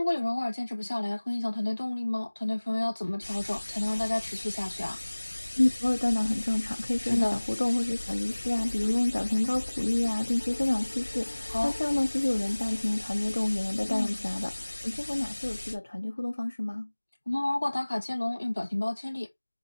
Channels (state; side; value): inverted; both; correlation -1.00